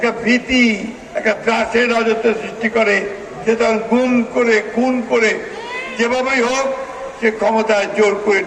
ভীতি, একটা ত্রাসের রাজত্ব সৃষ্টি করে, সে তখন গুম করে, খুন করে, যেভাবেই হোক সে ক্ষমতায় জোর করে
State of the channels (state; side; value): identical; both; correlation 1.00